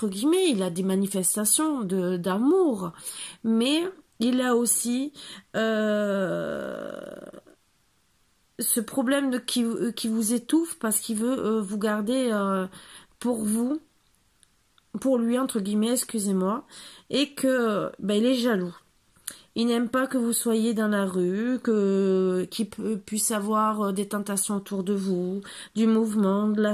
guillemets, il a des manifestations d'amour, mais il a aussi ce problème qui vous étouffe parce qu'il veut vous garder pour lui, entre guillemets, excusez-moi, et que il est jaloux. Il n'aime pas que vous soyez dans la rue, qu'il puisse avoir des tentations autour de vous, du mouvement, de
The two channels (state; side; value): identical; both; correlation 1.00